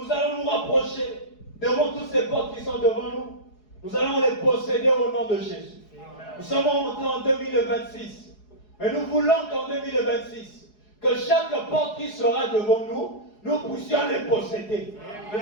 allons nous rapprocher devant toutes ces portes qui sont devant nous. Nous allons les posséder au nom de Jésus. Nous sommes entrés en 2026. Mais nous voulons qu'en 2026, que chaque porte qui sera devant nous, nous puissions les posséder. Nous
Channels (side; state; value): right; late; 4.8 ms